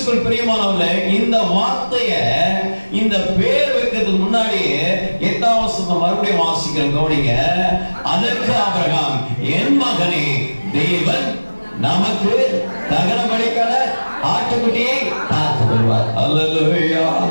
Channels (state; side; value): inverted; both; correlation -1.00